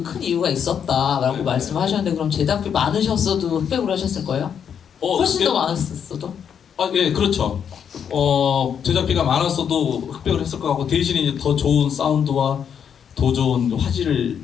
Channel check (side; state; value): right; quieter; 7.9 dB